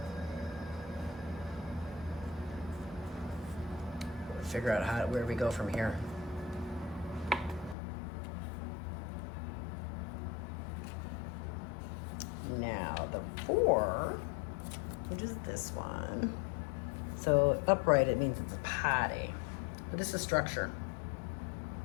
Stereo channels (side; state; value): right; drops out; at 7.8 s